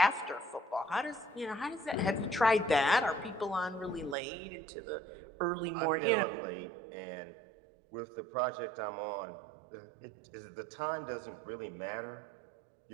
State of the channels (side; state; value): left; drops out; at 4.2 s